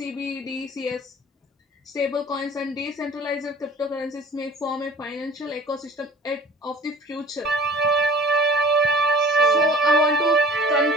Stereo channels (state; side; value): normal; both; correlation 0.45